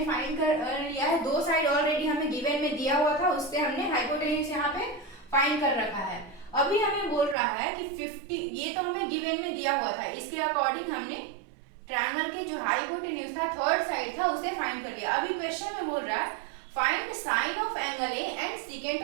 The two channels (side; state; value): left; drops out; at 7.4 s